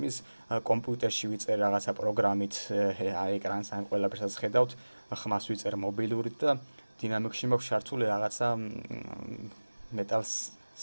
კომპიუტერში ვიწერ რაღაცა პროგრამით, ეკრანს ან ყველაფერსაც ხედავთ, ხმას ვიწერ მობილურით და დინამიკში მაქვს ჩართული რაღაცა მეტალს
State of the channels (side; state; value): both; inverted; correlation -1.00